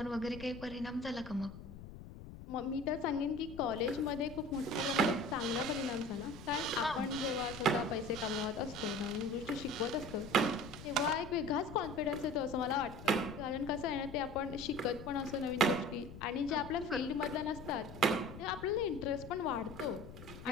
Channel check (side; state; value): left; noise; rumble, 14 dB below the sound